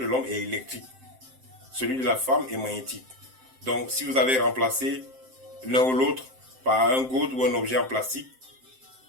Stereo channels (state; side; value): late; left; 7.7 ms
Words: l'homme est électrique. Celui de la femme est magnétique. Donc, si vous avez remplacé l'un ou l'autre par un gode ou un objet en plastique,